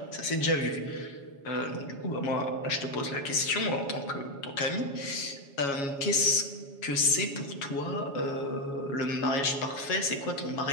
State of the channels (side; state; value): right; late; 7.2 ms